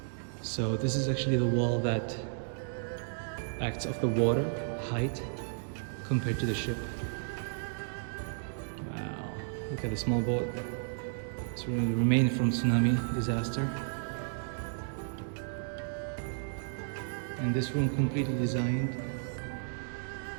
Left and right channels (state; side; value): silent; left; digital silence